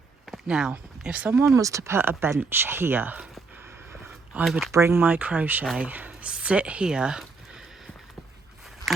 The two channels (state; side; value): quieter; left; 4.2 dB